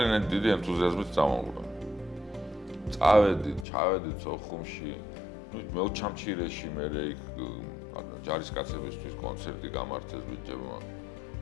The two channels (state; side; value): drops out; right; at 3.7 s